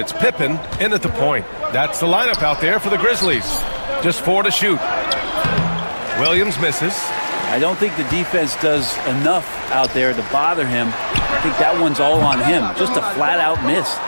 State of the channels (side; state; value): both; inverted; correlation -1.00